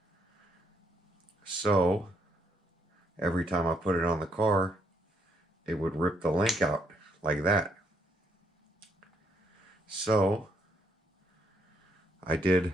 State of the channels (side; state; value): both; normal; correlation 0.72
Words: So every time I put it on the car, it would rip the link out like that. So I did